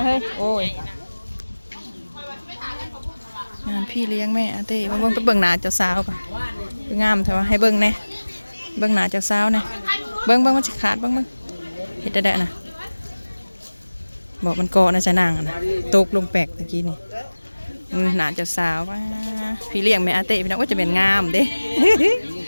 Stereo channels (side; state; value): both; inverted; correlation -1.00